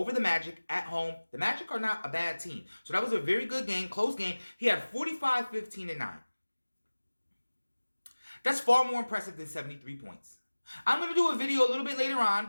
the Magic at home. The Magic are not a bad team. So that was a very good game, close game. He had 45, 15, and 9. That's far more impressive than 73 points. I'm going to do a video a little bit later on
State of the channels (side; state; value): both; inverted; correlation -1.00